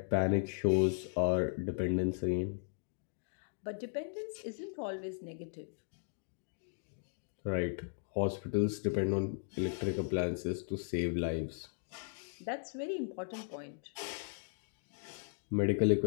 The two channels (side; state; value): right; silent; digital silence